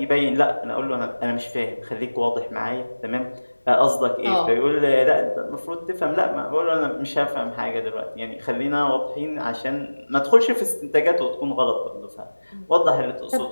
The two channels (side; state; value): both; inverted; correlation -1.00